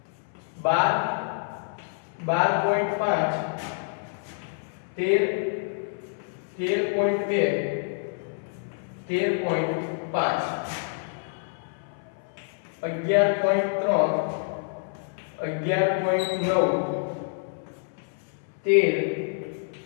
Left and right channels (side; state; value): right; silent; 60 dB below the other